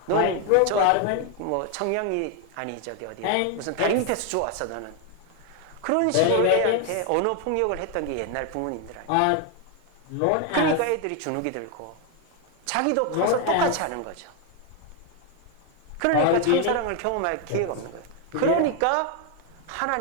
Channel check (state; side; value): different; both; correlation 0.00